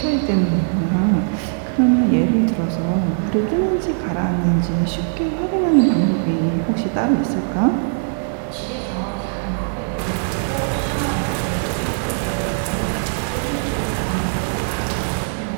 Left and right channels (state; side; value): silent; left; digital silence